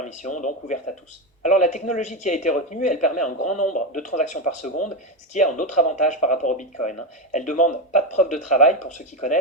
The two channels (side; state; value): both; normal; correlation 0.12